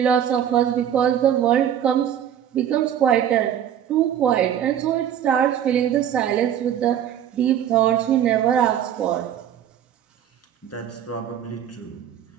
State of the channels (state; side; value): quieter; left; 9.9 dB